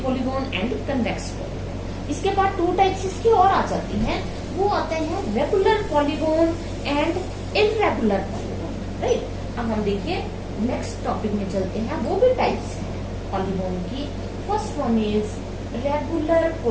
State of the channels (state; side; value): identical; both; correlation 1.00